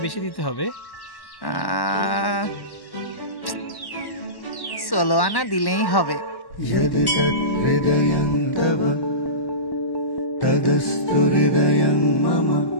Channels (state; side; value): late; right; 1.1 ms